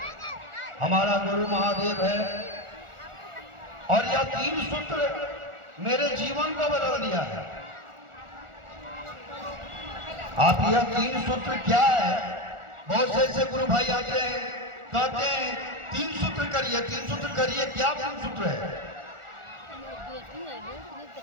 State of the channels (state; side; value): late; left; 1.4 ms